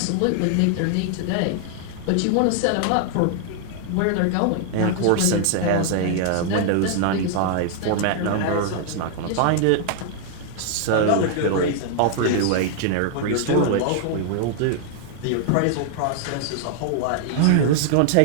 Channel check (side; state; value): both; different; correlation -0.01